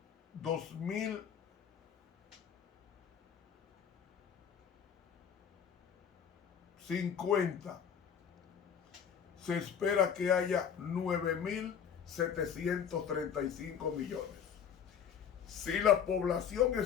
2000 50, se espera que haya 9.735 millones. Si la población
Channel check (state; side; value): quieter; right; 7.9 dB